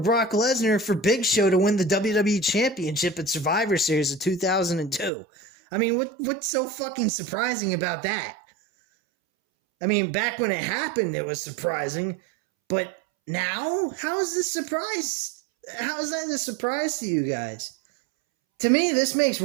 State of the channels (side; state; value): left; drops out; at 5.1 s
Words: Lesnar for Big Show to win the WWE Championship at Survivor Series of 2002. I mean, what's so fucking surprising about that? I mean, back when it happened, it was surprising. But now? How is this surprise? How is that a surprise to you guys? To me, this makes